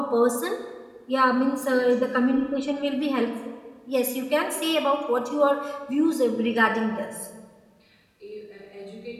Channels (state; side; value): identical; both; correlation 1.00